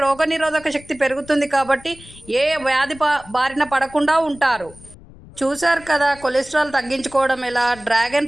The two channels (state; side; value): noise; left; rumble, 21 dB below the sound